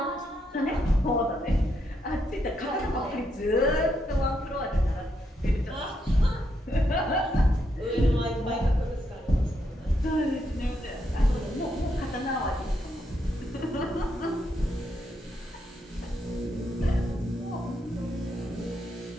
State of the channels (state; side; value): normal; both; correlation 0.79